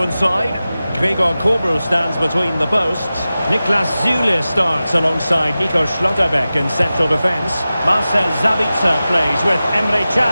side, Gregor Kobel stands between the posts. Niklas Süle starts alongside Nico Schlotterbeck in central defence. Marcel Sabitzer plays with Emre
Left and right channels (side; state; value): both; inverted; correlation -0.95